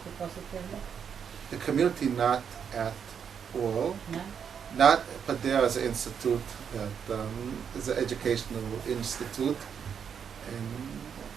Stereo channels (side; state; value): left; quieter; 7.4 dB